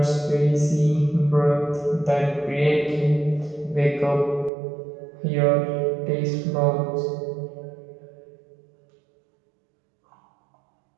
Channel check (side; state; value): left; drops out; at 4.5 s